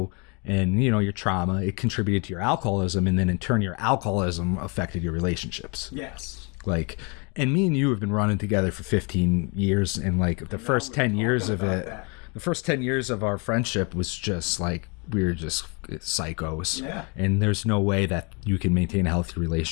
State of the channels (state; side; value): quieter; right; 33.2 dB